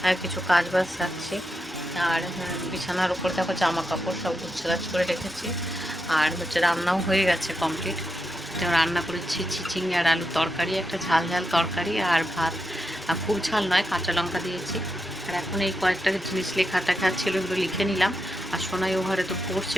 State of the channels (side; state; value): both; normal; correlation 0.85